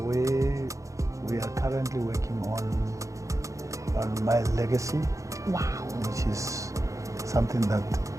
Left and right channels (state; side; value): late; left; 0.15 ms